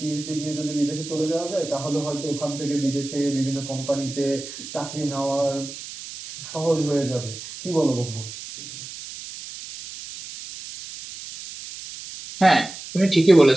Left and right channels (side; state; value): right; noise; hiss, 12 dB below the sound